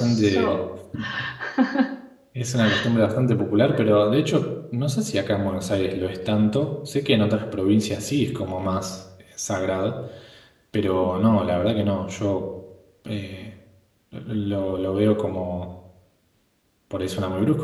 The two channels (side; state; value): both; identical; correlation 1.00